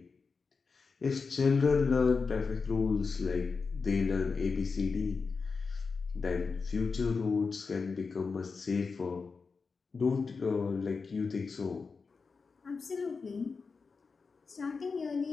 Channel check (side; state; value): right; quieter; 4.8 dB